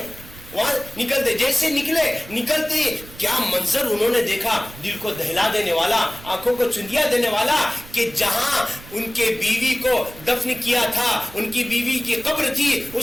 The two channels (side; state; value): right; noise; rumble, 18 dB below the sound